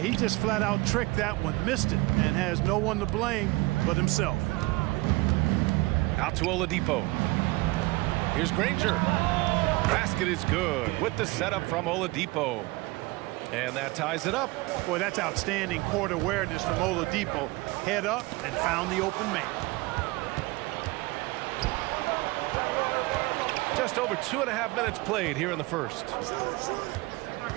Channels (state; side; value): quieter; left; 22.5 dB